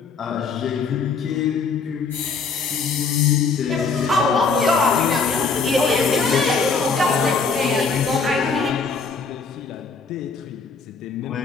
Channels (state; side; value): quieter; right; 4.7 dB